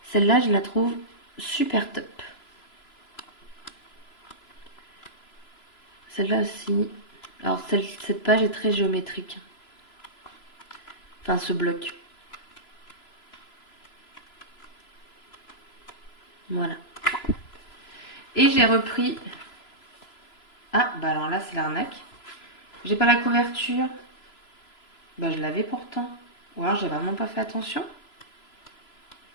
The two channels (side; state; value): right; late; 3.0 ms